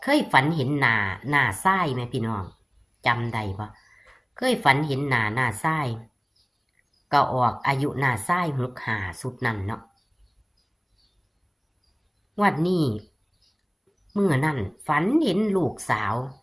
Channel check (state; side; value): identical; both; correlation 1.00